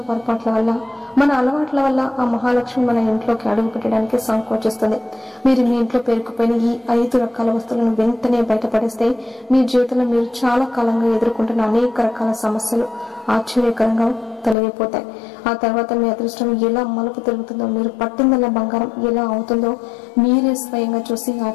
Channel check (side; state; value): right; drops out; at 14.6 s